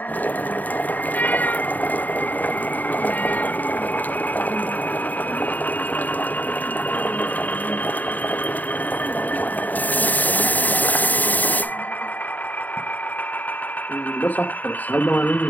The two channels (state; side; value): late; right; 0.083 ms